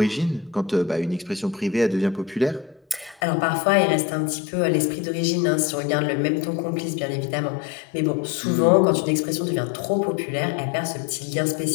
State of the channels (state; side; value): drops out; right; at 3.2 s